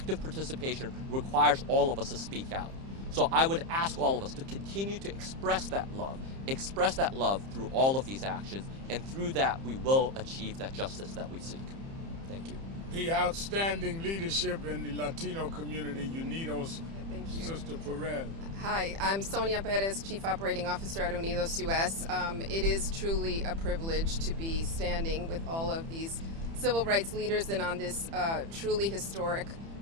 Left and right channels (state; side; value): late; left; 30 ms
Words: participation requires all of us to speak out. So I would ask all of us to continue to express that love through all of these actions, and through that we will achieve that justice that we seek. Thank you. The outstanding leadership in the Latino community, Unidos, Thank you. Sister Perez. Hi, I'm Sonia Perez, Chief Operating Officer at Unidos US. It is truly a privilege to be standing with all of these civil rights leaders and on this truly historic